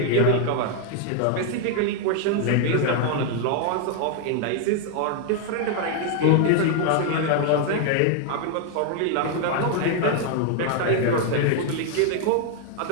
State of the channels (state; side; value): different; both; correlation 0.00